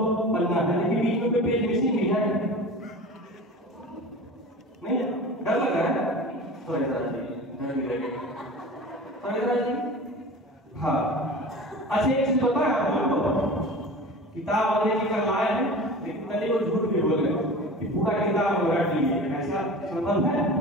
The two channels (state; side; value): normal; both; correlation 0.36